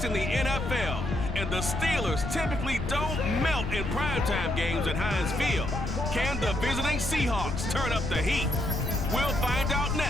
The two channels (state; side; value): noise; left; rumble, 4 dB below the sound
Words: in the NFL, and the Steelers typically don't melt in primetime games at Heinz Field. Can the visiting Seahawks turn up the heat? We'll find out